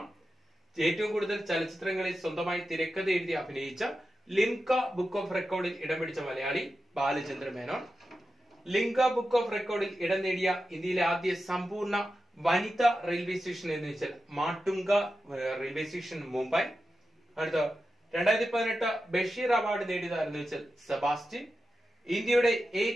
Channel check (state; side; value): normal; both; correlation 0.91